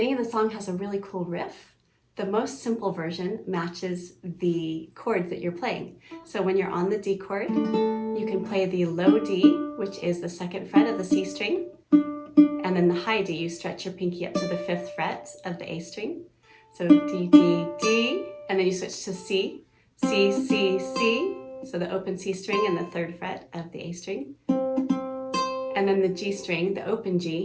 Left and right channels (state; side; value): identical; both; correlation 1.00